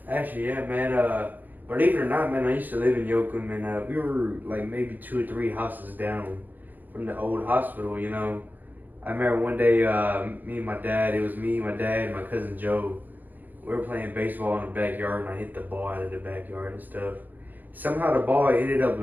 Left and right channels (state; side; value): late; left; 0.089 ms